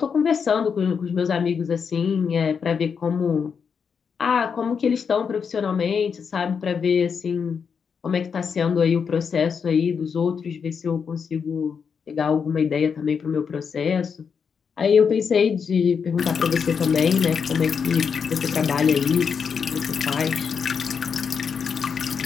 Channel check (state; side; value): quieter; right; 6.3 dB